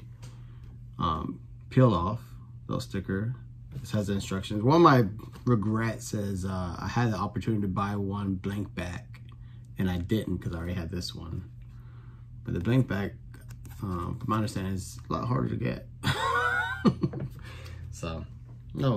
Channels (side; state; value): both; identical; correlation 1.00